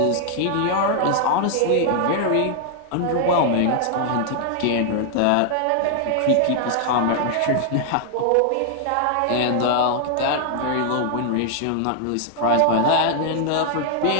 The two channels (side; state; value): both; different; correlation 0.00